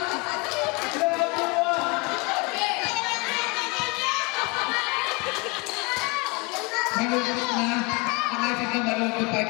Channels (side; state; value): right; quieter; 28.6 dB